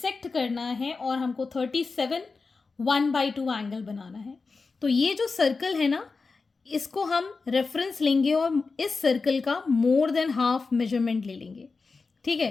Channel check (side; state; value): right; quieter; 4.3 dB